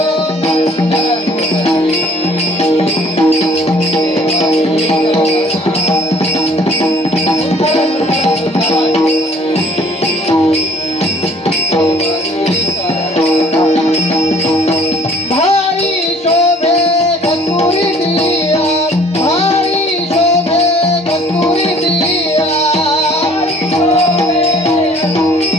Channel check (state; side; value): normal; both; correlation 0.56